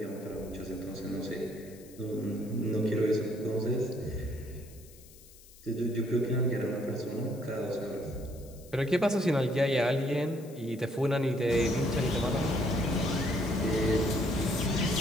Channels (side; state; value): left; noise; hiss, 22 dB below the sound